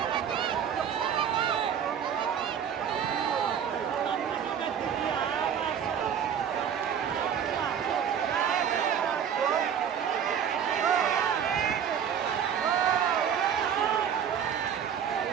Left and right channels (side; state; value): left; quieter; 8.3 dB